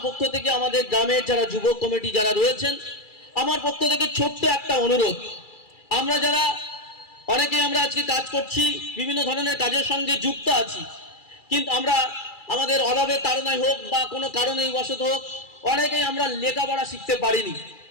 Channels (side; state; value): right; late; 2.3 ms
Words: পক্ষ থেকে আমাদের গ্রামের যারা যুবক কমিটি যারা রয়েছেন, আমার পক্ষ থেকে ছোট্ট একটা অনুরোধ, আমরা যারা অনেকেই আমরা আজকে কাজ করছি, বিভিন্ন ধরনের কাজের সঙ্গে যুক্ত আছি, কিন্তু আমরা আমাদের অভাবের তাড়নায় হোক বা কোনো কারণেই বশত হোক অনেকেই আমরা লেখাপড়া শিখতে পারিনি।